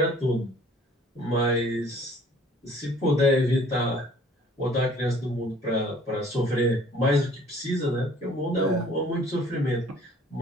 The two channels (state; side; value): normal; both; correlation 0.54